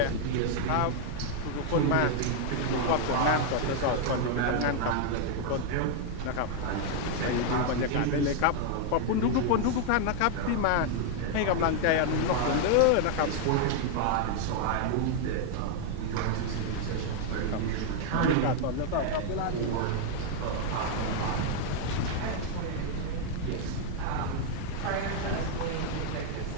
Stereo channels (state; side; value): different; both; correlation 0.00